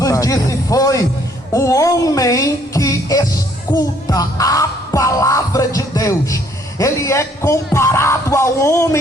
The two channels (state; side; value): normal; both; correlation 0.64